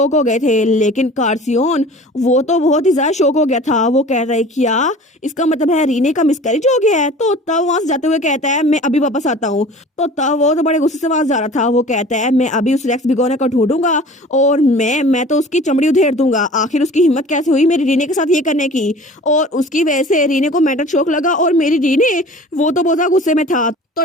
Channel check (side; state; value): both; normal; correlation 0.43